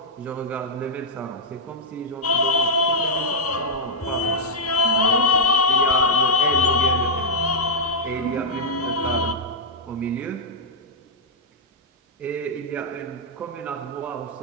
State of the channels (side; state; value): both; normal; correlation -0.06